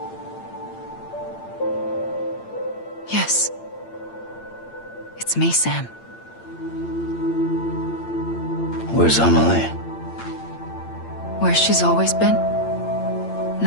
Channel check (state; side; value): late; right; 8.8 ms